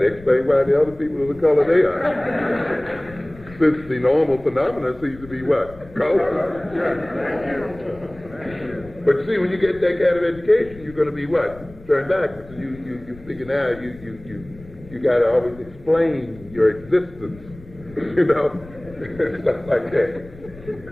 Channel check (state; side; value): noise; left; rumble, 20 dB below the sound